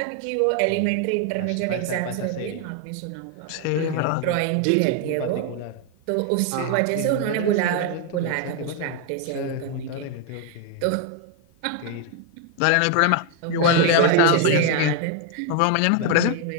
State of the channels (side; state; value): both; different; correlation 0.01